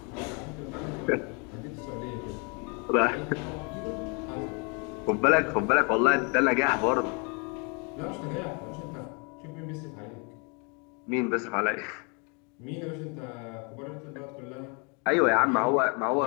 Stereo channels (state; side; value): quieter; right; 33.9 dB